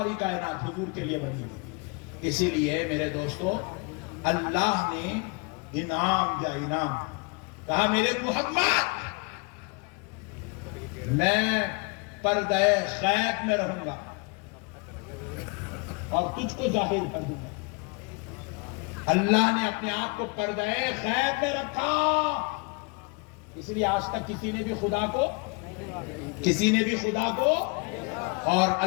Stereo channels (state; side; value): quieter; right; 31.8 dB